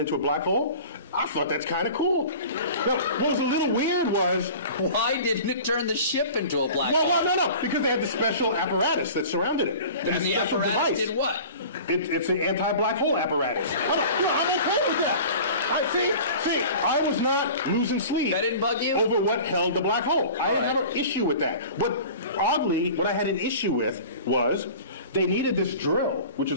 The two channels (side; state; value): both; inverted; correlation -0.40